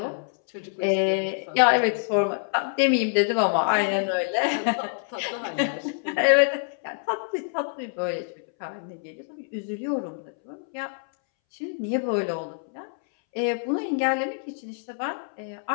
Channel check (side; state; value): right; silent; 61 dB below the other